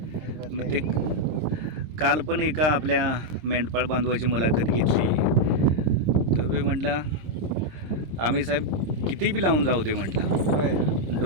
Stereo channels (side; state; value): left; late; 26 ms